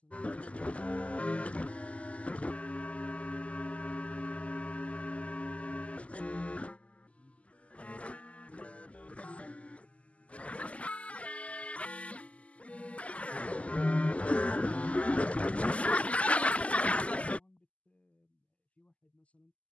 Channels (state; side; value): late; right; 0.065 ms